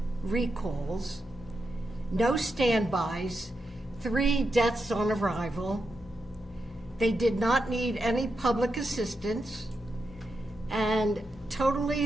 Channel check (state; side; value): normal; both; correlation 0.86